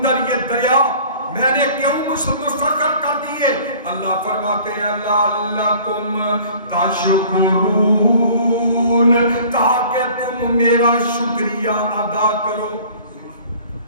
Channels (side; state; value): both; inverted; correlation -0.49